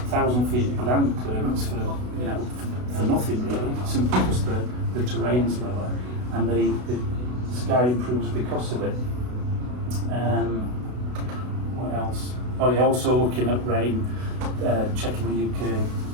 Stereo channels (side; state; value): left; late; 32 ms